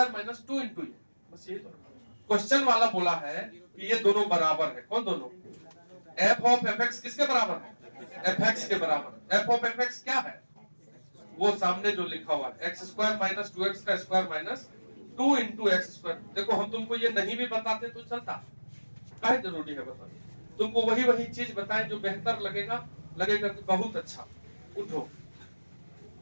माइनस 2 इंटू ये, बस ये तो क्वेश्चन वाला बोला है कि ये दोनों बराबर है। कौन दोनों, f ऑफ fx किसके बराबर है, fx के बराबर। f ऑफ fx क्या है, वो सामने जो लिखा हुआ है x स्क्वायर माइनस 2x का square minus 2 into x square. देखो हम तुमको ये नहीं भी बताते तो चलता, क्या जरूरी है बताना, तुमको वही वही चीज बताएं जो बेहतर लगेगा कि बहुत अच्छा। उठो,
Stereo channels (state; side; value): inverted; both; correlation -1.00